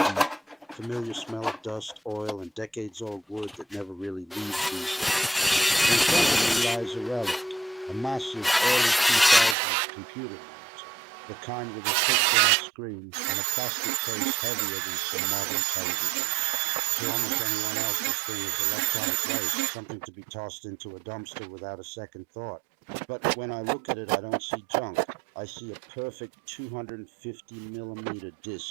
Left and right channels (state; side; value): drops out; left; at 9.6 s